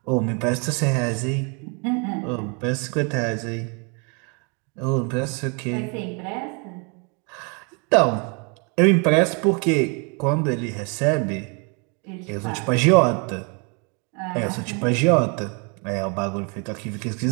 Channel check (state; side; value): quieter; left; 34.4 dB